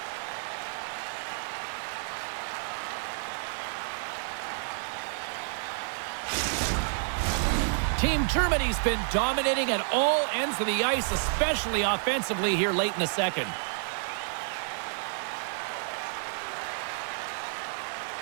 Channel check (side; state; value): left; silent; 58 dB below the other